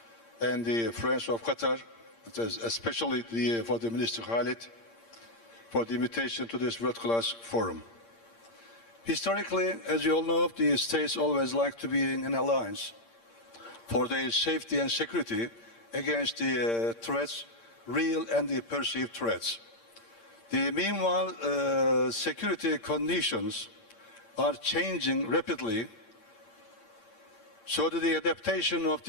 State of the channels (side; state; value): right; late; 8.7 ms